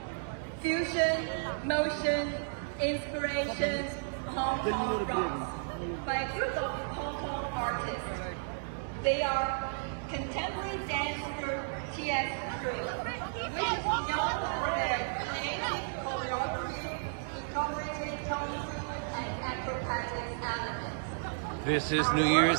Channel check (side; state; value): left; silent; digital silence